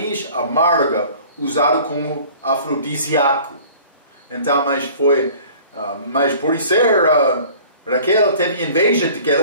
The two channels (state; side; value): inverted; both; correlation -0.47